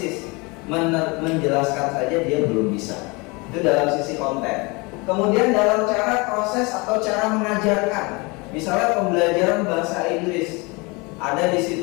menjelaskan saja dia belum bisa. Itu dalam sisi konten. Kemudian dalam cara proses atau cara mengajarkan, misalnya pembelajaran bahasa Inggris, ada di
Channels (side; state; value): right; quieter; 27.1 dB